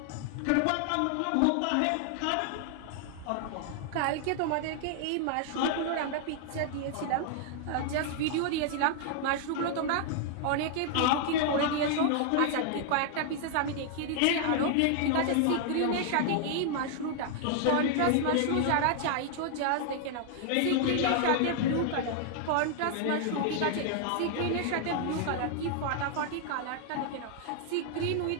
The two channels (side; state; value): both; different; correlation 0.00